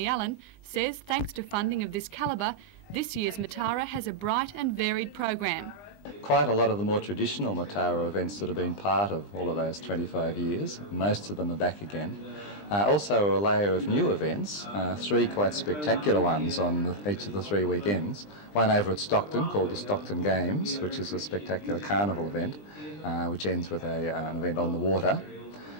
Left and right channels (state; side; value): late; right; 20 ms